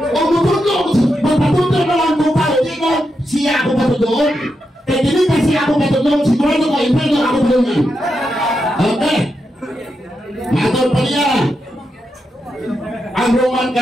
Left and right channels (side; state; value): both; normal; correlation 0.85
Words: mutudlo ako, magpatudlo na lang ko pa, hindi ko siya ako patudloon. Kaya dili kasi ako patudloon, sigurado ko, impero ako patudloon. Okay. Matol pa niya. Ang Roman